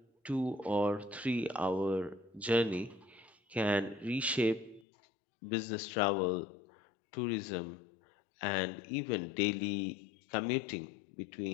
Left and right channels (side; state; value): right; drops out; at 4.9 s